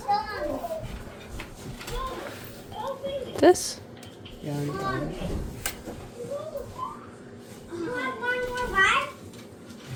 This? Yeah, you got it.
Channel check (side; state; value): both; identical; correlation 1.00